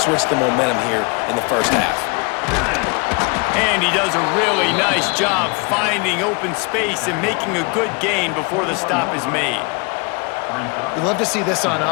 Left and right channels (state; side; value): quieter; right; 30.7 dB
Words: the momentum here in the first half. And he does a really nice job finding open space and making a good gain before the stop is made. We love to see this on